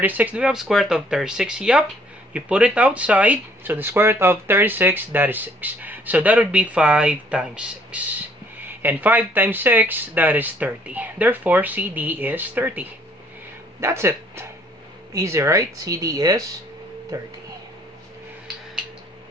do we have square root of 36? Yep. You put it outside. So the square root of 36, that is 6. So that would be 5 times 6. And 5 times 6, that is 30. Therefore, CD is 30. That's it. Easy, right? CD is 30.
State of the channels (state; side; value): normal; both; correlation 0.62